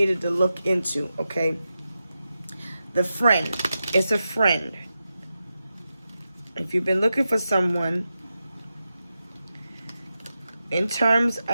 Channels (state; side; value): inverted; both; correlation -0.90